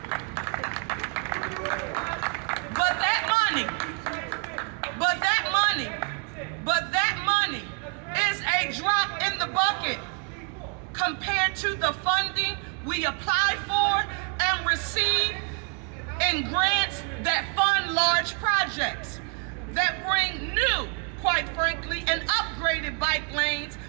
But that money is a drop in the bucket compared to the funding we apply for and receive in grants that fund large projects that bring new, quite frankly, and upgraded bike lanes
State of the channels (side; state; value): left; quieter; 39.2 dB